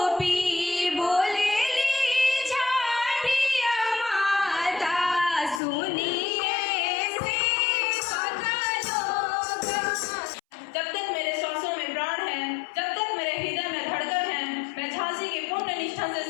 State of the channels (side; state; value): right; drops out; at 5.6 s